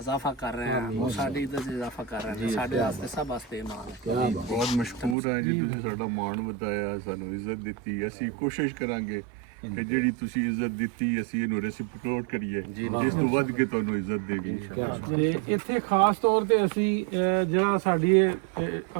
ਕਰ ਰਹੇ ਹਾਂ, ਉਹ ਸਾਡੀ ਇੱਜ਼ਤ 'ਚ ਇਜ਼ਾਫਾ ਕਰ ਰਹੇ ਨੇ। ਸਾਡੇ ਵਾਸਤੇ ਸਭ ਵਾਸਤੇ ਮਾਣ ਹੈ। ਬਹੁਤ ਮਸ਼ਕੂਰ ਹਾਂ ਜੀ, ਤੁਸੀਂ ਸਾਡਾ ਮਾਣ ਵਧਾਇਆ, ਸਾਨੂੰ ਇੱਜ਼ਤ ਦਿੱਤੀ। ਅਸੀਂ ਕੋਸ਼ਿਸ਼ ਕਰਾਂਗੇ ਕਿ ਜਿਹੜੀ ਤੁਸੀਂ ਇੱਜ਼ਤ ਦਿੱਤੀ ਅਸੀਂ ਇਹਨੂੰ ਰੈਸਿਪੀਕੇਟ ਕਰੀਏ, ਇਸ ਤੋਂ ਵੱਧ ਕੇ ਤੁਹਾਨੂੰ ਇੱਜ਼ਤ ਦੇਗੀ। ਤੇ ਇੱਥੇ ਖਾਸ ਤੌਰ ਤੇ ਅਸੀਂ ਜਿਹੜਾ ਸਾਡੀ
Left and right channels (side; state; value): left; drops out; at 5.2 s